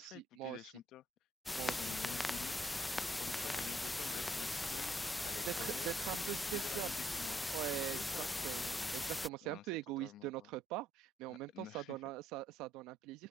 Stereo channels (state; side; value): normal; both; correlation 0.73